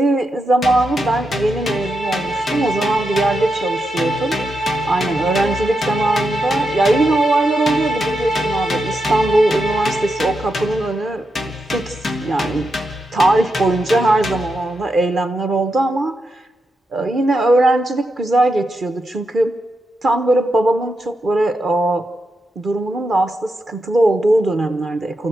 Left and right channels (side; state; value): both; normal; correlation 0.86